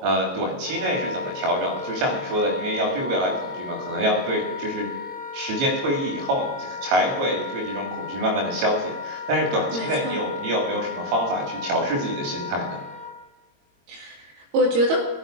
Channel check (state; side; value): late; left; 22 ms